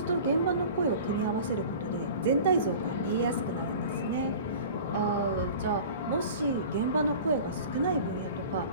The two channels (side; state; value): both; inverted; correlation -0.40